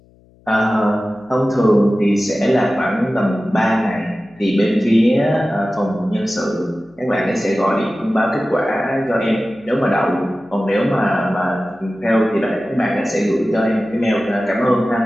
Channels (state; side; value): noise; left; hum, 30 dB below the sound